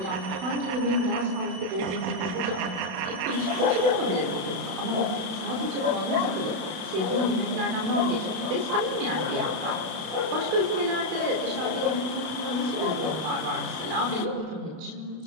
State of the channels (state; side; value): late; left; 32 ms